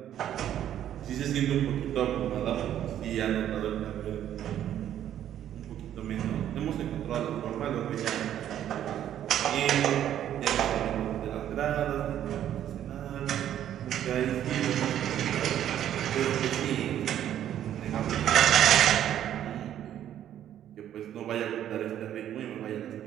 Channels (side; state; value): left; quieter; 10.9 dB